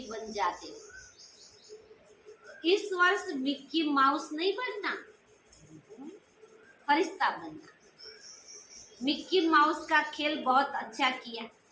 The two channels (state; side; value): identical; both; correlation 1.00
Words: बन जाते हो। इस वर्ष मिक्की माउस नहीं बनना, फरिश्ता बनना। मिक्की माउस का खेल बहुत अच्छा किया,